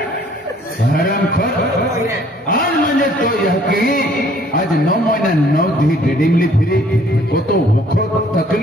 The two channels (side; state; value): both; normal; correlation 0.59